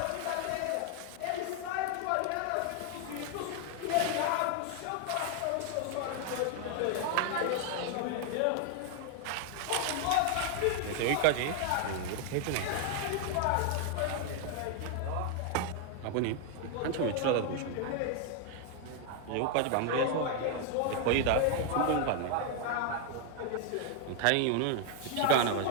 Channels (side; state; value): both; different; correlation 0.00